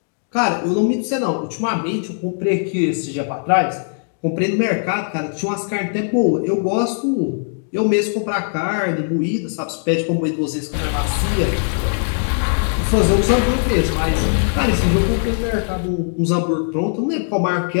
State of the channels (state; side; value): silent; right; digital silence